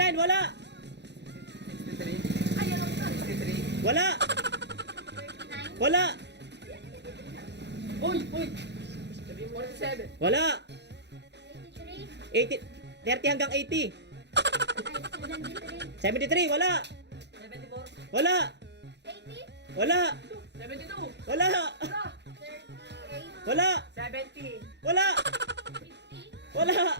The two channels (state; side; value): late; left; 0.50 ms